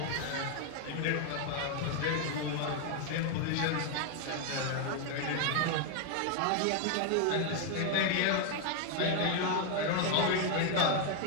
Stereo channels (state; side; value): different; both; correlation 0.00